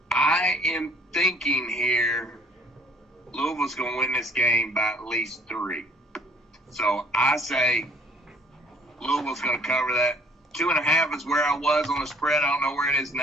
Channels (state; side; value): normal; both; correlation 0.58